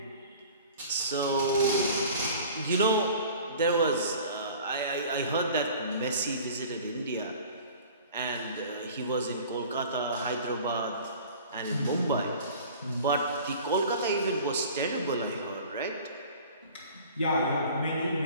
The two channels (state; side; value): inverted; both; correlation -0.44